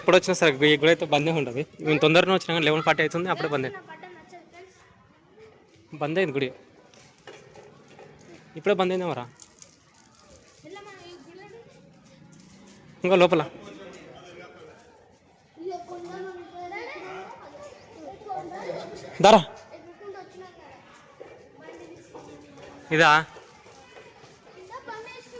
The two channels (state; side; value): identical; both; correlation 1.00